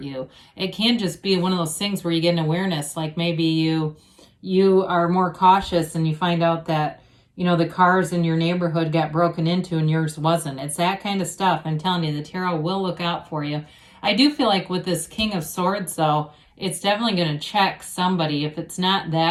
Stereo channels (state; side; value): identical; both; correlation 1.00